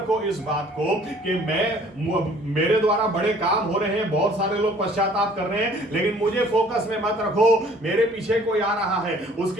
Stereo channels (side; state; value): both; normal; correlation 0.55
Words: इस बात को कि मेरे द्वारा बड़े काम हो रहे हैं, बहुत सारे लोग पश्चाताप कर रहे हैं, लेकिन मुझे फोकस में मत रखो। मेरे पीछे कोई आ रहा है,